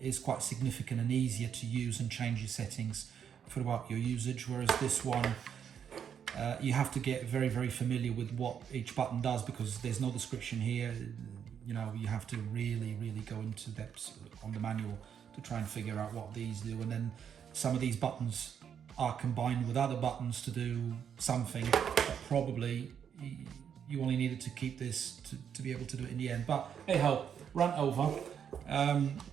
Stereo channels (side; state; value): left; quieter; 8.1 dB